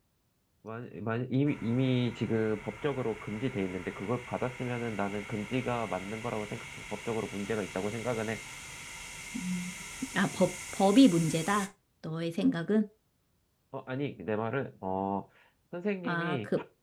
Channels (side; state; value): both; identical; correlation 1.00